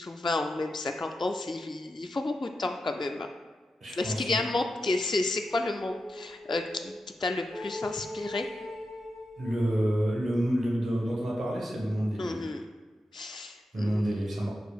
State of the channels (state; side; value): normal; both; correlation 0.88